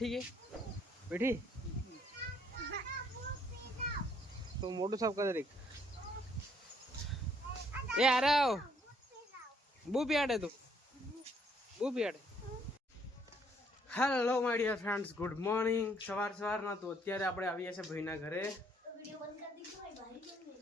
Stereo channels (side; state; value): both; normal; correlation 0.67